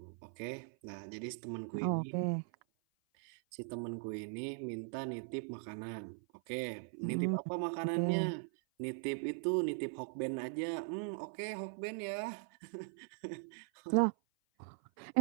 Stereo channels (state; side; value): silent; left; 51 dB below the other